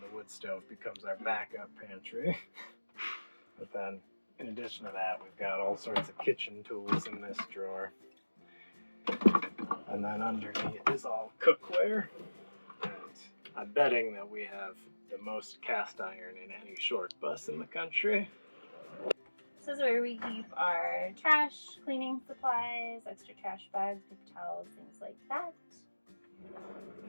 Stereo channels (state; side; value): inverted; both; correlation -1.00